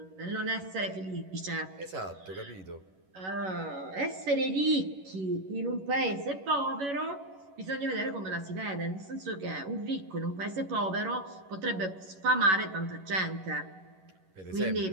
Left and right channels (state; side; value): late; left; 11 ms